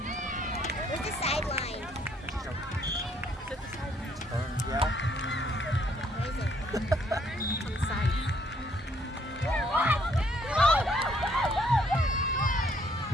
Where's the sideline? Yeah. Where is it? On the side.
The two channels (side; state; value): both; normal; correlation 0.67